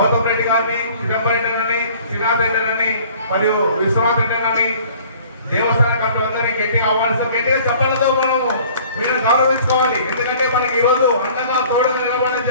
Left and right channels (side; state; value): both; inverted; correlation -0.52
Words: రెడ్డి గారిని, చిదంబరం రెడ్డి, శ్రీనాథ్ రెడ్డి మరియు విశ్వనాథ్ రెడ్డి దేవస్థాన కమిటీ అందరినీ గట్టిగా ఆహ్వానిస్తాం. గట్టిగా చెప్పడంతో మనము వీళ్ళని గౌరవించుకోవాలి. ఎందుకంటే మనకి ఈ రోజు అండగా తోడుగా నిలబడే